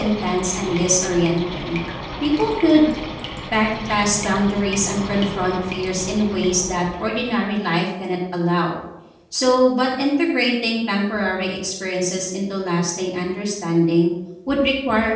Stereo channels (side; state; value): both; identical; correlation 1.00